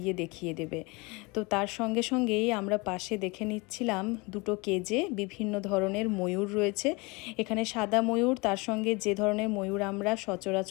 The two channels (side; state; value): right; quieter; 26.8 dB